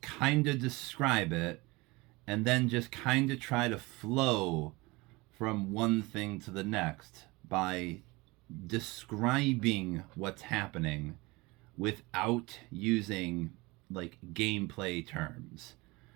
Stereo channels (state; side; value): quieter; left; 23.5 dB